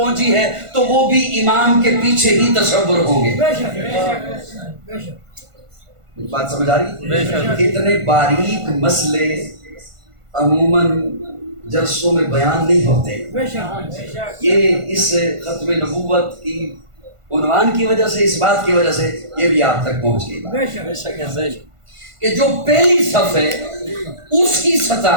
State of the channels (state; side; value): late; left; 1.5 ms